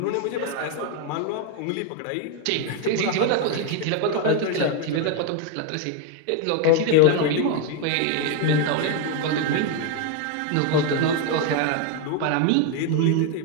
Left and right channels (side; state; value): both; different; correlation 0.01